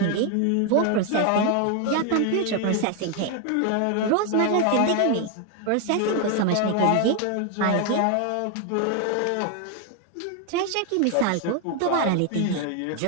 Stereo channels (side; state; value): both; different; correlation 0.01